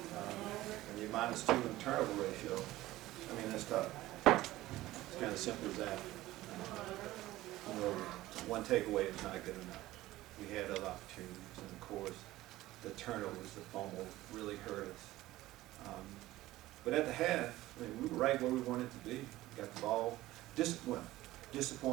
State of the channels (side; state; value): left; quieter; 16.7 dB